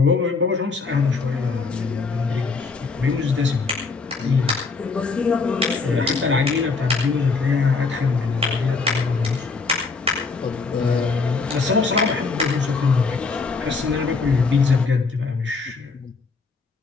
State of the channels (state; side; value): quieter; right; 4.4 dB